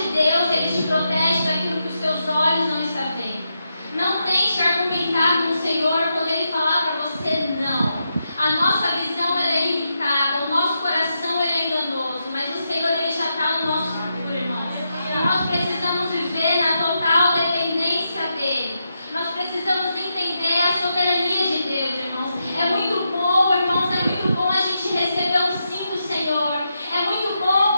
Deus, ele te protege daquilo que os teus olhos não estão vendo. Não tente argumentar com o Senhor quando ele falar para você não. A nossa visão ela é limitada, o nosso coração ele é enganoso, mas o Senhor ele já está no nosso futuro, irmãos. Nós precisamos viver na total dependência dele. Nós precisamos entender a soberania de Deus, irmãos. É muito bom, irmãos, é muito bom a gente receber o sim do Senhor. É muito bom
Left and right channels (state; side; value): inverted; both; correlation -0.84